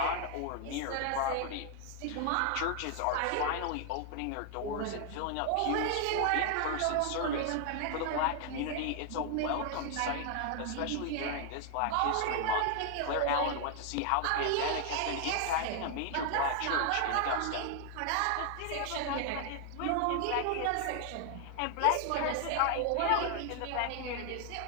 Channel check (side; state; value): both; different; correlation 0.00